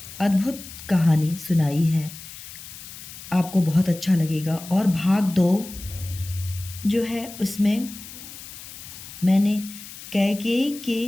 अद्भुत कहानी सुनाई है। आपको बहुत अच्छा लगेगा। और भाग 2 जो है, उसमें मैंने कैकेयी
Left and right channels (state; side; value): noise; left; hiss, 14 dB below the sound